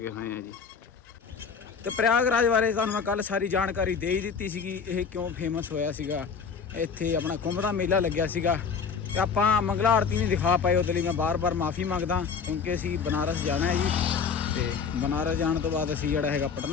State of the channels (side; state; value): right; quieter; 6.0 dB